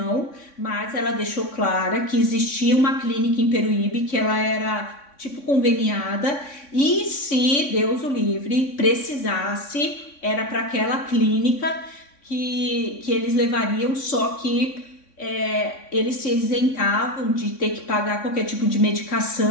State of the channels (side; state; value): right; late; 3.6 ms